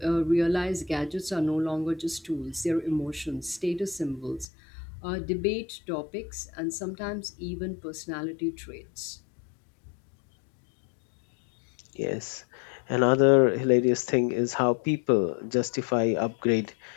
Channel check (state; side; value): drops out; right; at 4.5 s